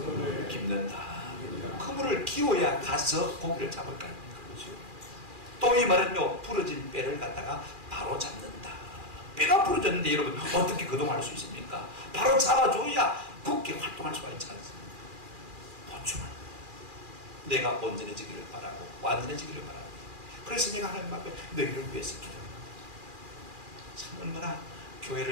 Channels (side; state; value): left; late; 2.4 ms